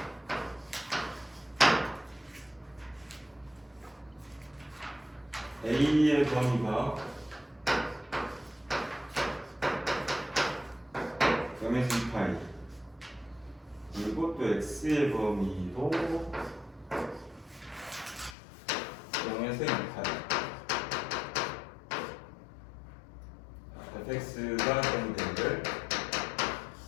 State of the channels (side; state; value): right; drops out; at 18.4 s